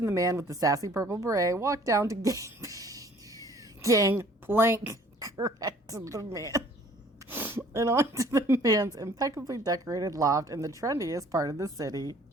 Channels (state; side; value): normal; both; correlation 0.55